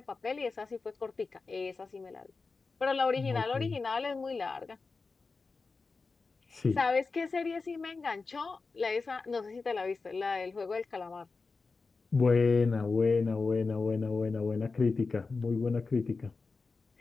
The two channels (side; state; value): right; quieter; 4.2 dB